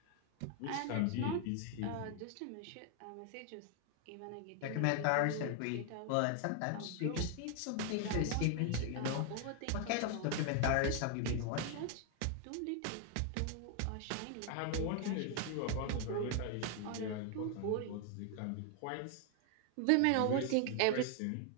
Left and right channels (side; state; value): both; different; correlation 0.00